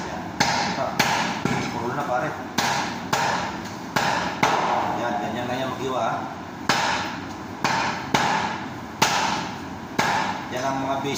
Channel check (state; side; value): identical; both; correlation 1.00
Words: Yan. Ito. Puro na pare. Yan, ganyan lang yan mag-iwa ha. Yan ang mga